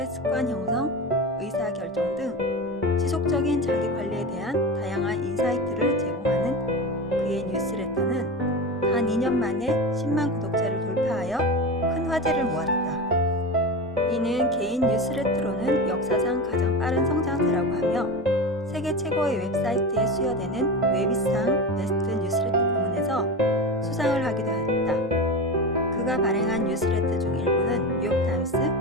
습관 형성, 의사결정 등 지속적인 자기 관리에 대한 다양한 인사이트를 제공하는 그의 뉴스레터는 단 2년 만에 10만 구독자를 돌파하여 큰 화제를 모았다. 이는 개인 뉴스레터로는 역사상 가장 빠른 성장세라고 하며 세계 최고의 웹사이트에 수여되는 웨비상 베스트 뉴스레터 부문에서 수상을 하기도 했다. 그가 발행한 뉴스레터 중 일부는 뉴욕타임스,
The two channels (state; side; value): normal; both; correlation 0.24